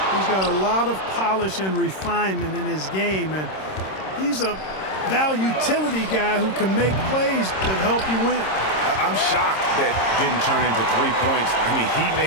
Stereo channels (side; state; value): right; late; 26 ms